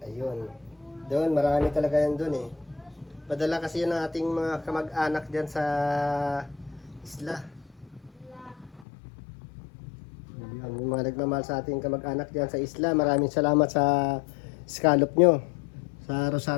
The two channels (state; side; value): drops out; right; at 8.8 s